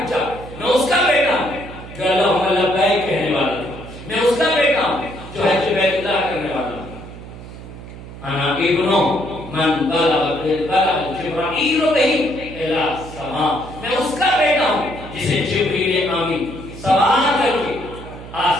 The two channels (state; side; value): noise; right; hum, 14 dB below the sound